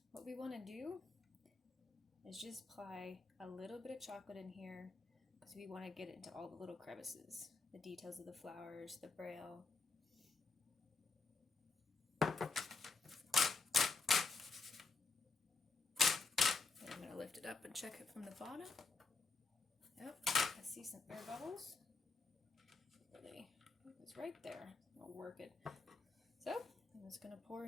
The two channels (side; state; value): right; quieter; 4.2 dB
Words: What we want to do is just apply a little bit of chocolate in here because we want to get it into all the little crevices. The details of the flowers, the braille. And I'm going to lift it up and check it from the bottom. Yep, I see some air bubbles. Really, it was right there. I'll work it. So, I'm just going to pour